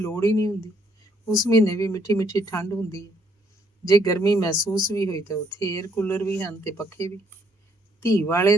ਹੀ ਨਹੀਂ ਹੁੰਦੀ। ਉਸ ਮਹੀਨੇ ਵੀ ਮਿੱਠੀ ਮਿੱਠੀ ਠੰਡ ਹੁੰਦੀ ਹੈ। ਜੇ ਗਰਮੀ ਮਹਿਸੂਸ ਵੀ ਹੋਈ ਤਾਂ ਉੱਥੇ ਏਅਰ ਕੂਲਰ ਵੀ ਹਨ ਤੇ ਪੱਖੇ ਵੀ। ਧੀ ਵਾਲੇ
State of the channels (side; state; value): both; normal; correlation 0.68